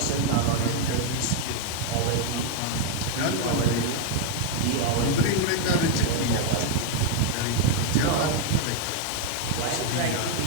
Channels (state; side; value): different; both; correlation 0.01